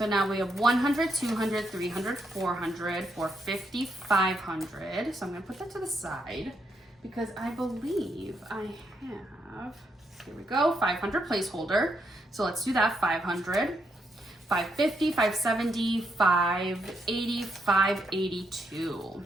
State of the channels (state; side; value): normal; both; correlation 0.78